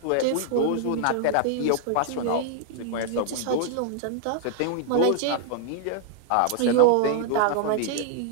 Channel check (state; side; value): different; both; correlation 0.00